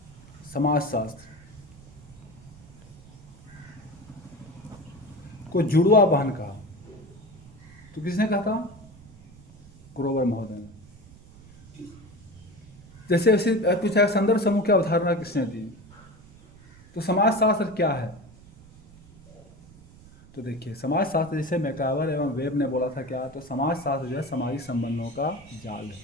समाजशास्त्र को जुड़वा बहन कहा। तो किसने कहा था? ग्रोवर महोदय ने। जैसे ऐसे पूछा संदर्भ समूह की अवधारणा किसने दी? तो समाजशास्त्र क्या है? तो देखिए समाजशास्त्र जैसे मैकावर एवं वेब ने बोला था क्या? तो समाजशास्त्र जो है सामाजिक संबंधों का जाल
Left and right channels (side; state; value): right; noise; rumble, 22 dB below the sound